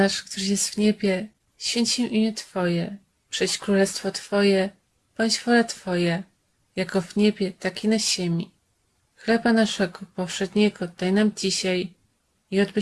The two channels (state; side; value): identical; both; correlation 1.00